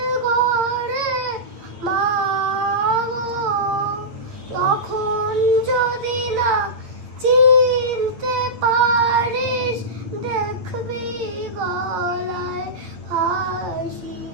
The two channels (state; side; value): late; left; 8.7 ms